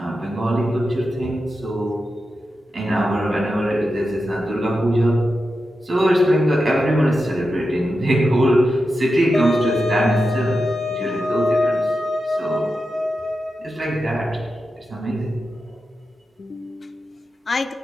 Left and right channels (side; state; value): both; normal; correlation 0.90